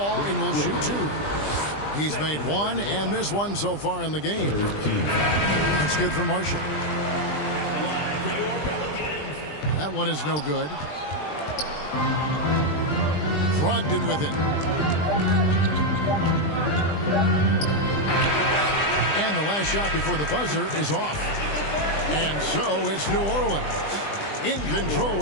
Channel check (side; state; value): right; late; 20 ms